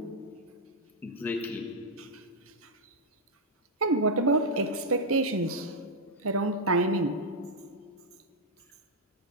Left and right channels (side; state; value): both; normal; correlation -0.04